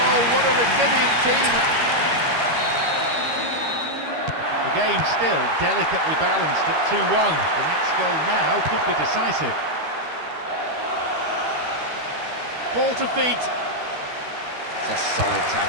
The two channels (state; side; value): late; left; 13 ms